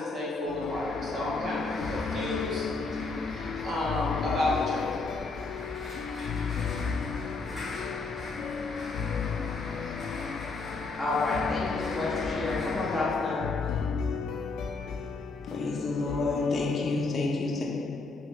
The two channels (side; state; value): right; quieter; 3.7 dB